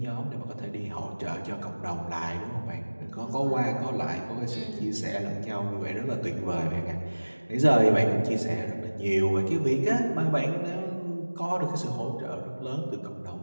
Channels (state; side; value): inverted; both; correlation -1.00